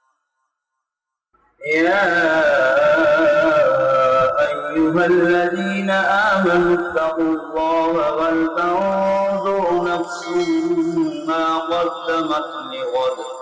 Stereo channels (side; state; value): both; identical; correlation 1.00